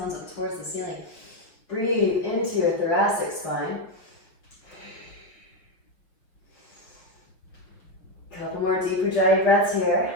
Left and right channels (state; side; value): late; right; 5.8 ms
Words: up towards the ceiling. Breathe into your thoracic spine. Couple more deep Ujjayi breaths here.